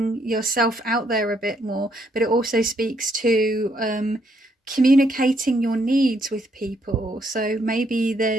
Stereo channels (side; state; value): both; normal; correlation 0.72